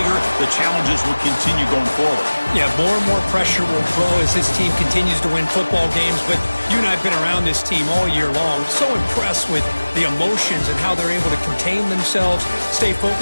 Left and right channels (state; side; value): inverted; both; correlation -1.00